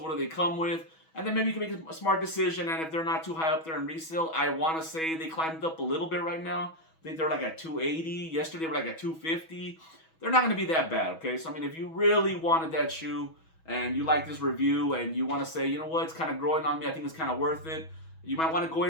do they come with, and then maybe you can make a smart decision. And if they're not too high up there in resale, I want to say they climbed up a little bit right now. I think they're like at 280. Yesterday they were like at 250. They're not going to be that bad, okay? So, if you really wanted that shoe and you like this review and you want to say, you know what, it's kind of growing on me, I think it's kind of worth it. You might want to go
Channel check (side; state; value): right; late; 6.2 ms